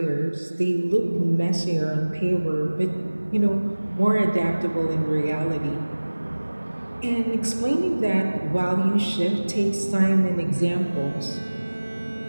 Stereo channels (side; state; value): both; inverted; correlation -1.00